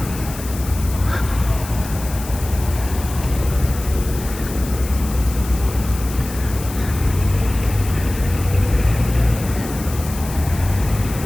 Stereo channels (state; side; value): noise; left; hiss, 13 dB below the sound